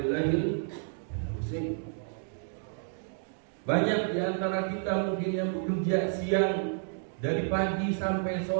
Husain. Banyak di antara kita mungkin yang bekerja siang dari pagi sampai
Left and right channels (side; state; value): left; silent; digital silence